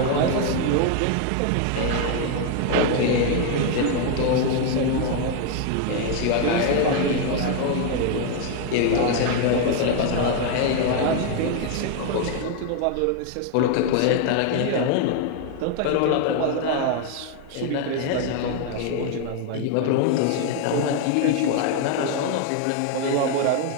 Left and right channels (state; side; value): different; both; correlation 0.01